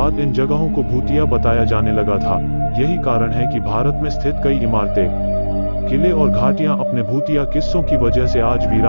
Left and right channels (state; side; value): inverted; both; correlation -1.00